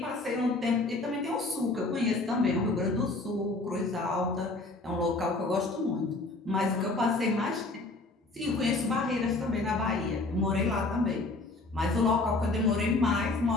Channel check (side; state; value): right; quieter; 3.2 dB